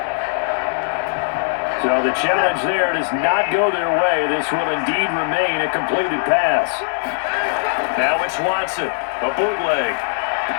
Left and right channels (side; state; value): right; silent; digital silence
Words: So the challenge there does not go their way. This will indeed remain a completed pass. Now it's Watson, a bootleg.